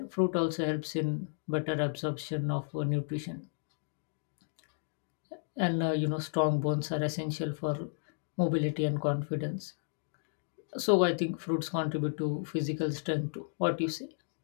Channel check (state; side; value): silent; right; digital silence